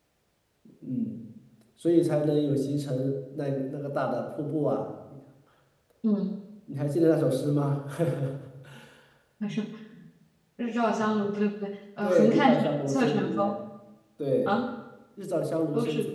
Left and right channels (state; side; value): identical; both; correlation 1.00